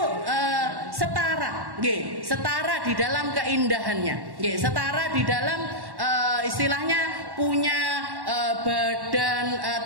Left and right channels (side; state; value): left; late; 1.1 ms